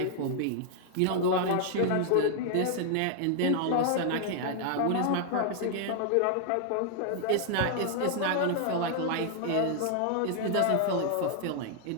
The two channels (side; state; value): both; different; correlation -0.01